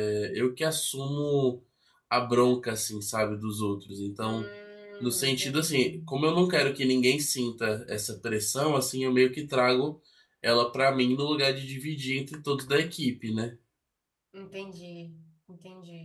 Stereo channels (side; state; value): both; identical; correlation 1.00